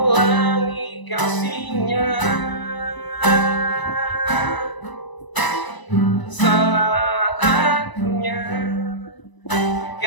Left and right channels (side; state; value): right; late; 1.0 ms